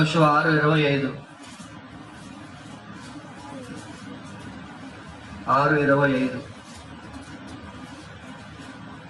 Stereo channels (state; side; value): identical; both; correlation 1.00